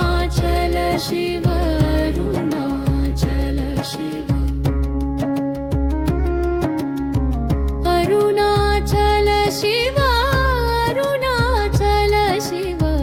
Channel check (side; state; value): both; identical; correlation 1.00